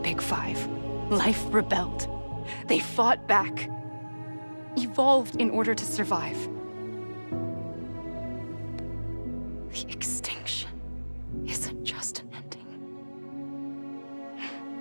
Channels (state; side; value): inverted; both; correlation -1.00